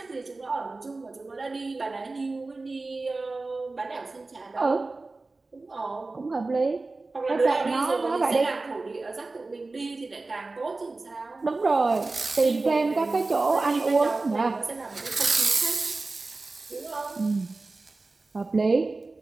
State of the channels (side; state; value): left; quieter; 3.4 dB